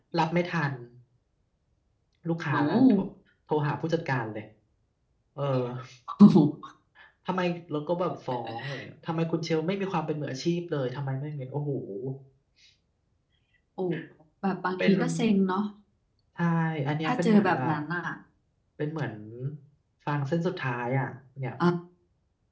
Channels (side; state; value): both; identical; correlation 1.00